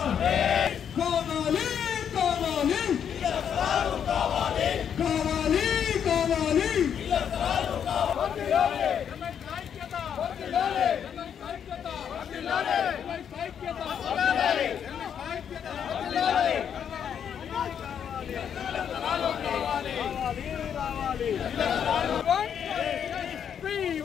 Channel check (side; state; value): right; quieter; 8.3 dB